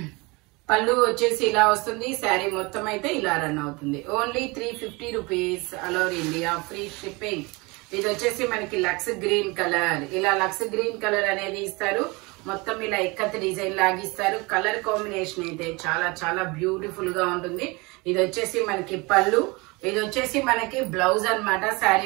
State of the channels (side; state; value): left; quieter; 26.0 dB